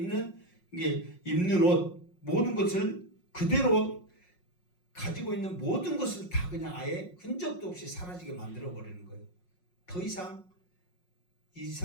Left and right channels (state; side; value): late; right; 5.5 ms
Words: 이게 입는 옷 모든 것을 그대로 가지고 있는 모든 것을 다 그냥 아예 흔적도 없이 사라지게 만들어 버리는 거예요. 더 이상 이